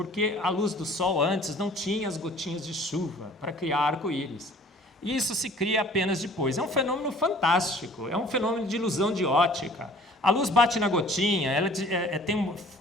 a luz do sol antes não tinha as gotinhas de chuva para criar arco-íris. E isso se cria apenas depois. É um fenômeno fantástico, é um fenômeno de ilusão de ótica. A luz bate na gotinha, ela tem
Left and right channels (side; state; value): both; normal; correlation 0.51